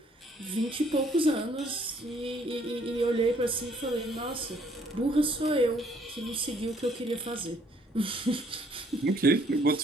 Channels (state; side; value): normal; both; correlation 0.64